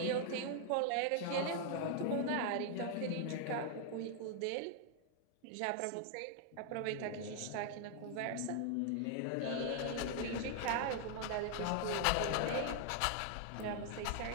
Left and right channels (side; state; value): both; different; correlation 0.00